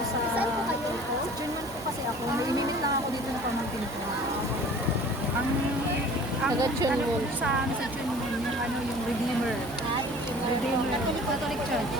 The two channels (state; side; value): noise; right; hum, 17 dB below the sound